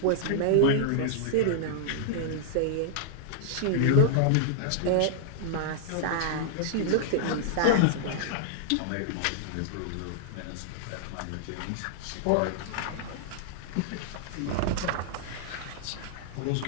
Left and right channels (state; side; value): different; both; correlation -0.01